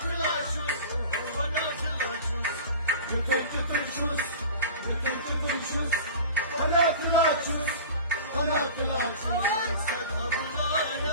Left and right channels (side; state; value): both; inverted; correlation -0.37